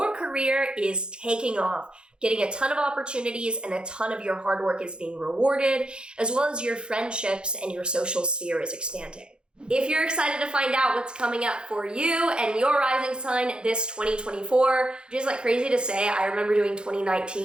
career is taking off, getting a ton of opportunities and a ton of your hard work is being rewarded, as well as your friendships and your social sphere is expanding. If you're excited to find out what's coming up for you and your rising sign this 2024, which is like crazy to say, I remember doing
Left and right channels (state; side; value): late; left; 0.051 ms